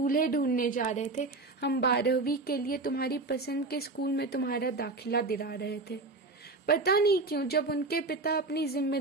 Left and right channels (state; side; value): quieter; left; 3.3 dB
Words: ढूंढने जा रहे थे, हम 12वीं के लिए तुम्हारी पसंद के स्कूल में तुम्हारा दाखिला दिला रहे थे। पता नहीं क्यों जब उनके पिता अपनी